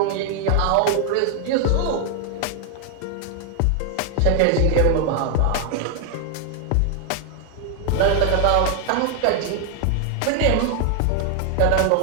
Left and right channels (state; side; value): different; both; correlation 0.00